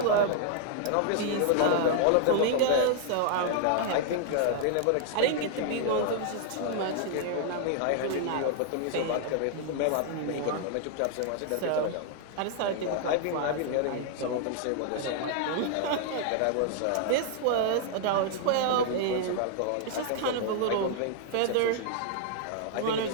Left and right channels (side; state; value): both; different; correlation 0.00